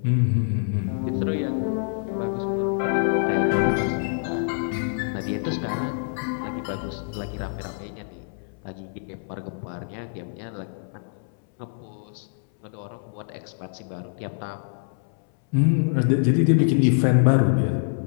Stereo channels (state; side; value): silent; right; 61 dB below the other